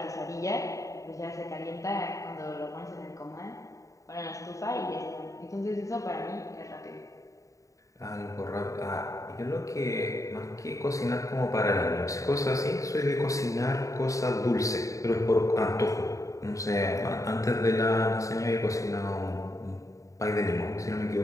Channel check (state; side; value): late; right; 0.16 ms